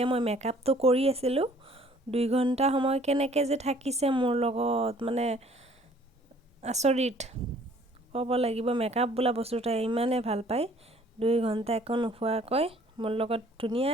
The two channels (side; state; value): both; normal; correlation 0.57